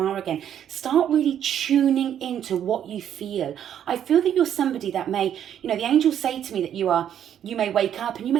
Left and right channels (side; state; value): left; quieter; 9.8 dB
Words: again. Start really tuning into what you feel. I feel that you're somebody that may, the angels say to me that you may wake up and you